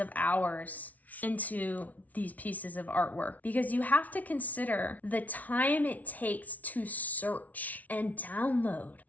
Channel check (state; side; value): late; right; 0.073 ms